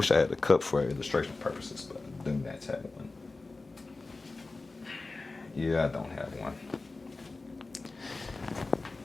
I had a cup for illustration purposes, but I do not have one. Yeah, I don't have one.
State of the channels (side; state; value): right; quieter; 3.5 dB